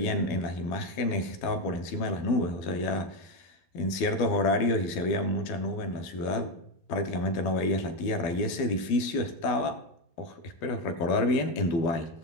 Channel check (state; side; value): late; right; 12 ms